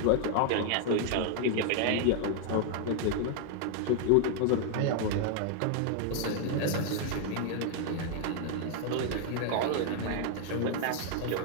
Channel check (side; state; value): both; different; correlation 0.00